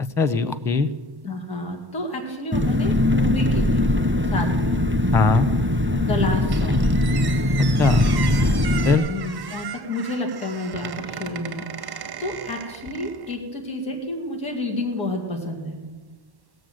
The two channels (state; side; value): late; left; 1.1 ms